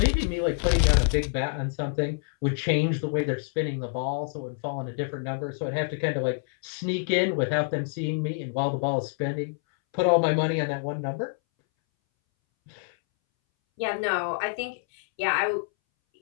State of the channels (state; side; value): silent; right; 60 dB below the other